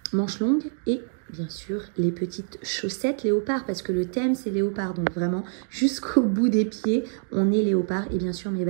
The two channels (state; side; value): silent; left; 61 dB below the other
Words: Manches longues et bien sûr les petites chaussettes léopard, parce que le thème c'est léopard. Donc vraiment jusqu'au bout des pieds, on est léopard. Et bien sûr mes